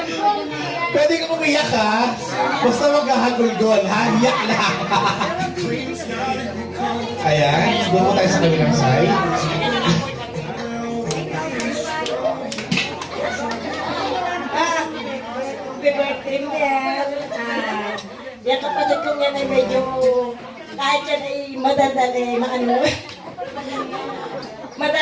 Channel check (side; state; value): both; identical; correlation 1.00